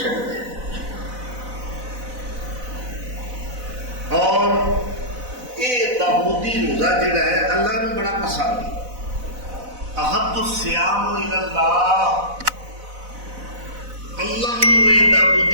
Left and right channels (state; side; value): late; left; 4.0 ms